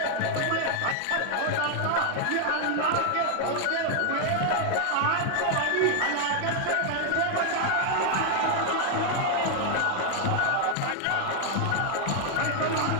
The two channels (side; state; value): both; different; correlation 0.00